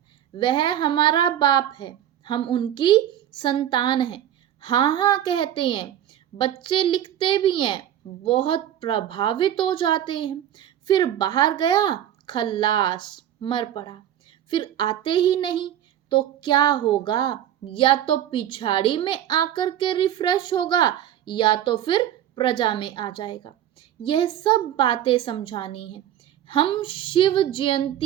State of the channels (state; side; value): quieter; left; 11.1 dB